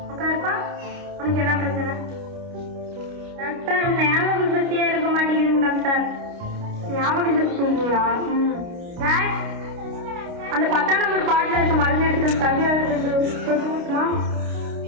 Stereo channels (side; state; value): left; late; 29 ms